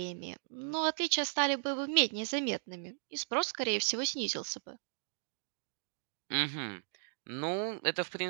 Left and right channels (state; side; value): silent; left; digital silence